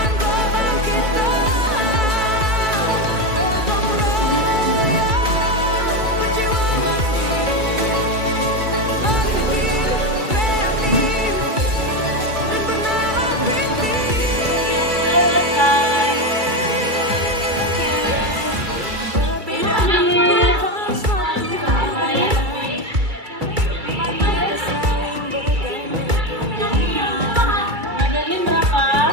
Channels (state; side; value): late; left; 2.3 ms